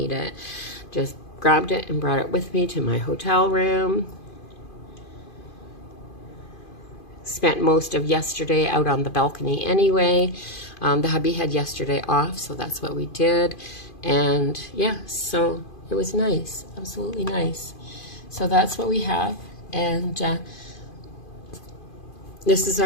it. Just grabbed it and brought it with me to my hotel room. Spent most of yesterday out on the balcony anyway. The hubby had yesterday off, so that's what we did. And yeah, so it was nice, absolutely nice. So that's what we have, and this is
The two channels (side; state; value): right; late; 2.5 ms